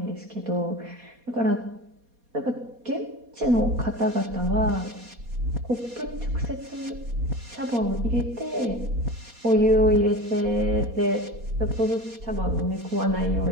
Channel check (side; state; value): left; late; 4.2 ms